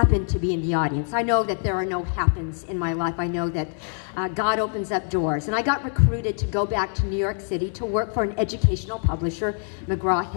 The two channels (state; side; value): silent; right; 55 dB below the other